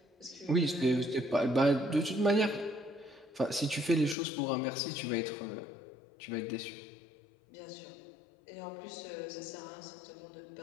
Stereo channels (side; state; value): right; drops out; at 4.2 s